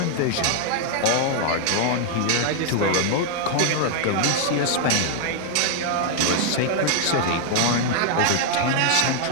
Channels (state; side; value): different; both; correlation 0.00